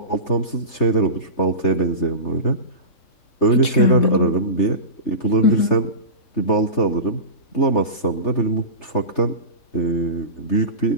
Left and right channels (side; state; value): right; late; 3.7 ms